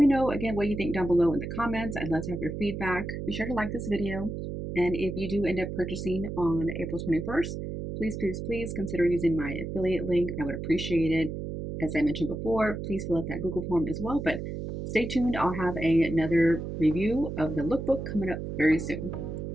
know again what you think down below in the comments. I'd love to have your feedback. Be sure to like this video. And if you do end up purchasing on April 21st, please, please, please consider using my affiliate link. I would appreciate it. As I mentioned before, please fill out that Google form as well. But stay tuned. I'll have another review of the lookbook coming up very soon.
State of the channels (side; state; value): right; noise; hum, 6 dB below the sound